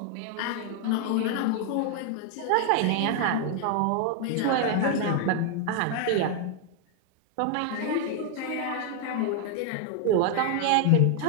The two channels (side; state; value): both; different; correlation 0.00